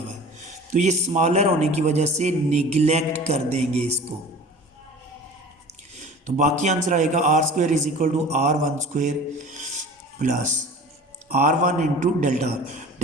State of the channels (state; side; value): normal; both; correlation 0.41